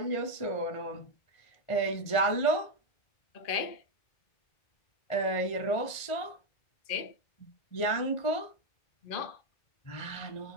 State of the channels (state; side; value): late; right; 1.5 ms